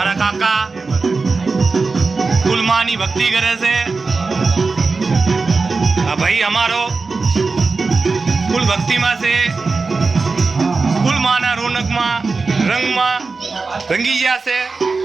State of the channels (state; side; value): quieter; left; 4.2 dB